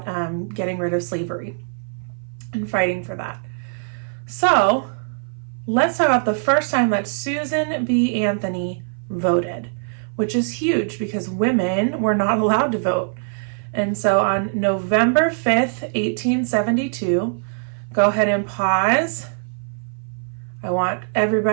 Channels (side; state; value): left; silent; 58 dB below the other